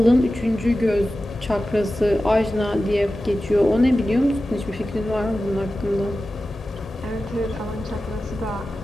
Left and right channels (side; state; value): both; normal; correlation 0.94